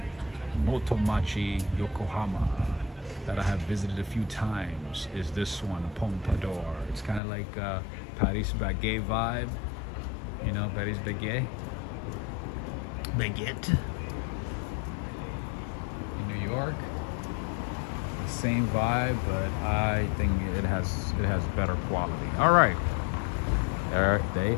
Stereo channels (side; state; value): right; drops out; at 7.2 s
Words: Motomachi, Yokohama, that I have visited a few times is this one, Pompadour. It's kind of like Paris Baguette vibe, you know, Paris Baguette in New York. The same vibe, but I think it has better quality. All right. They